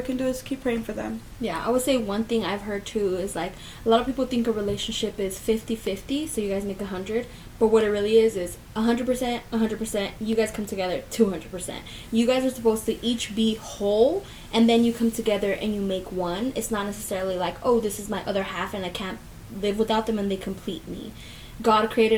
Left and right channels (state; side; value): identical; both; correlation 1.00